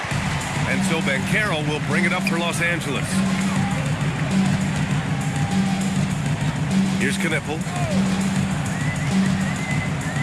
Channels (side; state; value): both; identical; correlation 1.00